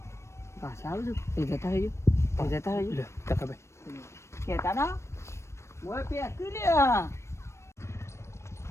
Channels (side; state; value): right; late; 0.13 ms